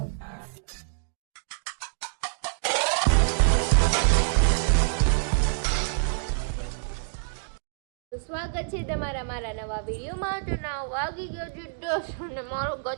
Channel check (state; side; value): silent; left; digital silence